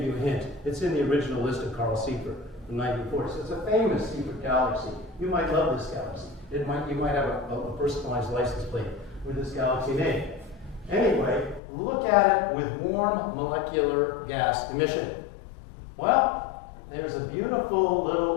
you a hint. It's in the original list of Carl Seyfert from 1940. So it's a famous Seyfert galaxy. You might love this galaxy. You might have a personalized license plate with this galaxy name. Anyway, look at it with warm molecular gas emission. Well, there's a beautiful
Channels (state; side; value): drops out; right; at 11.6 s